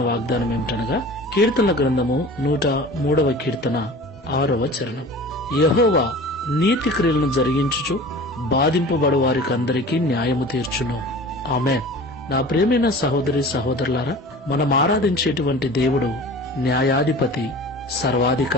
వాగ్దానం ఏమిటనగా కీర్తనల గ్రంథము 103వ కీర్తన 6వ చరణం. యెహోవా నీతి క్రియలను జరిగించుచు బాధింపబడు వారికందరికీ న్యాయము తీర్చును. ఆమేన్. నా ప్రియమైన సహోదరి సహోదరులారా, మనం ఆరాధించేటువంటి దేవుడు న్యాయాధిపతి,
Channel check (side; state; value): both; normal; correlation 0.40